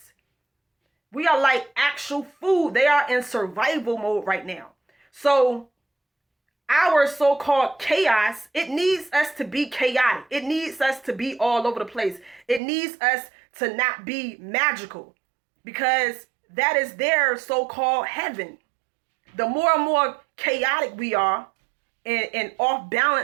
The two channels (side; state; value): left; drops out; at 12.6 s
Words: We are like actual food. They are in survival mode right now. So our so-called chaos, it needs us to be chaotic. It needs us to be all over the place. It needs us to not be magical, because that is their so-called heaven. The more and more chaotic we are and off